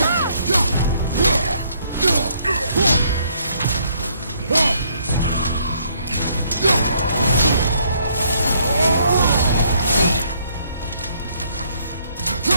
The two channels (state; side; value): inverted; both; correlation -0.68